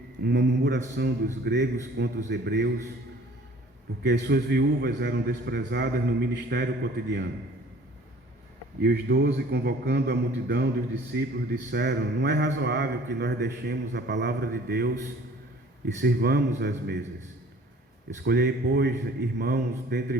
uma murmuração dos gregos contra os hebreus, porque as suas viúvas eram desprezadas no ministério cotidiano. E os 12, convocando a multidão dos discípulos, disseram: não é razoável que nós deixemos a palavra de Deus e sirvamos às mesas. Escolhei, pois, irmãos, dentre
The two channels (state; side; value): normal; both; correlation 0.51